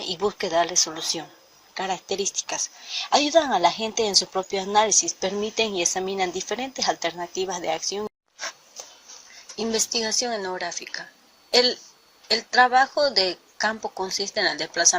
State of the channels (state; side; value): identical; both; correlation 1.00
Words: y busque darle solución. Características. Ayudan a la gente en su propio análisis, permiten y examinan diferentes alternativas de acción. Investigación etnográfica. El trabajo de campo consiste en el